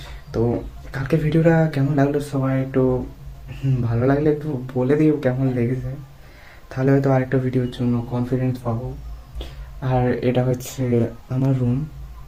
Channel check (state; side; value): identical; both; correlation 1.00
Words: তো কালকের ভিডিওটা কেমন লাগলো সবাই একটু ভালো লাগলে একটু বলে দিও কেমন লেগেছে, তাহলে হয়তো আরেকটা ভিডিওর জন্য কনফিডেন্স পাবো। আর এটা হচ্ছে আমার রুম,